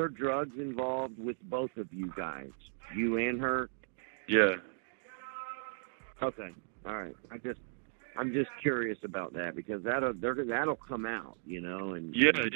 drugs involved with both of you guys, you and her? Yeah. Okay. All right. I'm just curious about that, because that'll come out, you know, and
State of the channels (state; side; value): silent; left; digital silence